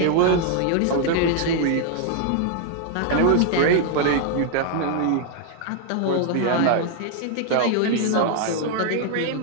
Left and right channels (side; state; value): both; different; correlation 0.00